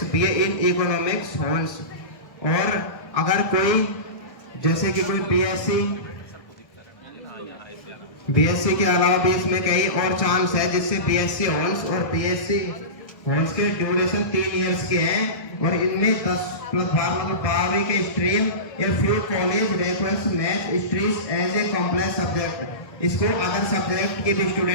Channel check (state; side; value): late; right; 1.4 ms